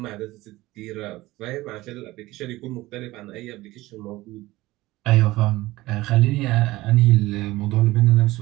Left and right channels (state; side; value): quieter; left; 18.5 dB